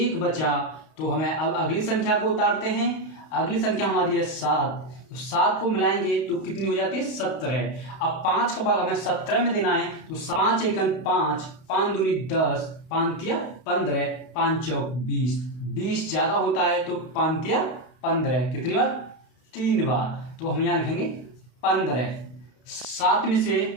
बचा, तो हमें अब अगली संख्या को उतारते हैं। अगली संख्या हमारी है 7, तो 7 को मिलाएंगे तो कितनी हो जाती है? 17। अब 5 का भाग हमें 17 में देना है, तो 5 एकन 5, 5 दूनी 10, 5 तिया 15, 5 चौक 20, 20 ज़्यादा होता है तो 5 तिया 15, कितनी बार? 3 बार, तो हम यहाँ लिखेंगे 15। 7 में से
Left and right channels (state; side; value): late; right; 32 ms